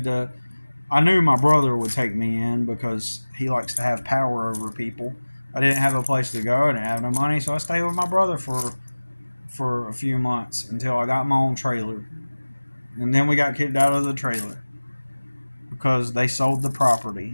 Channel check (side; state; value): both; inverted; correlation -1.00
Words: knew my brother would take me in because he likes to have power over people. I didn't have a place to go. I didn't have no money, so I stayed with my brother for a few months until I got my own trailer. And then we got kicked out of the trailer because they sold the property.